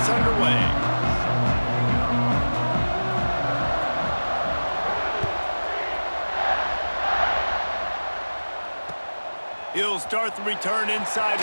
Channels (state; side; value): inverted; both; correlation -1.00